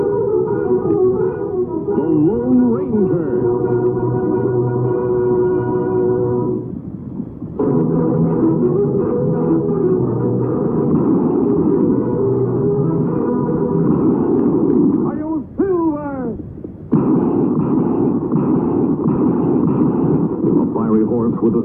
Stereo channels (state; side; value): identical; both; correlation 1.00